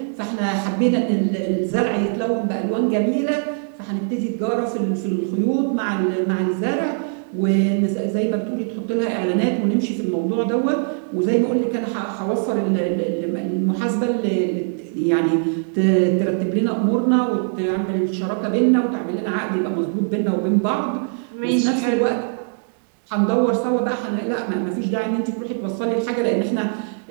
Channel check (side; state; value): left; silent; 65 dB below the other